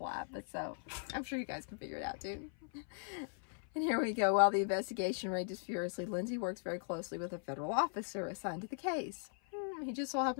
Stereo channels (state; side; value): silent; right; 52 dB below the other